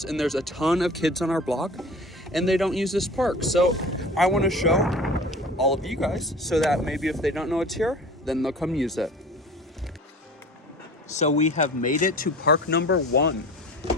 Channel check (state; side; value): normal; both; correlation 0.40